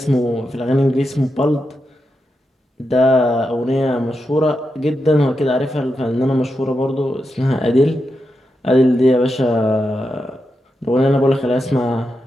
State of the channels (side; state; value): both; normal; correlation 0.87